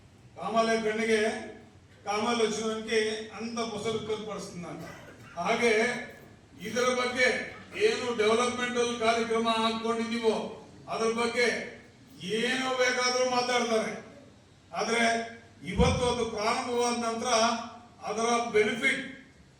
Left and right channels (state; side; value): identical; both; correlation 1.00